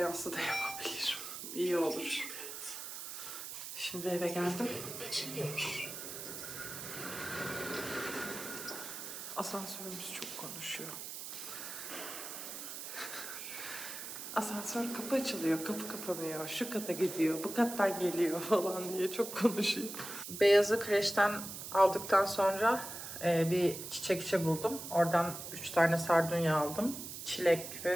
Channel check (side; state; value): right; noise; hiss, 8 dB below the sound